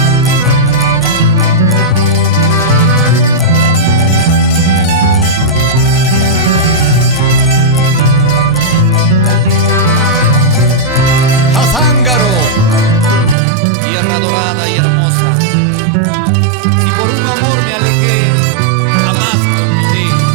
Tierra dorada y hermosa, si por un amor me alejé, jamás te olvidé.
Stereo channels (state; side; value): drops out; left; at 13.4 s